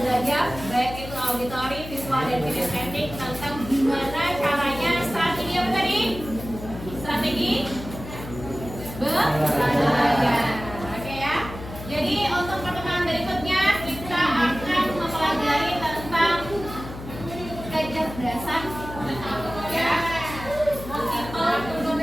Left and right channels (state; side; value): noise; left; hum, 11 dB below the sound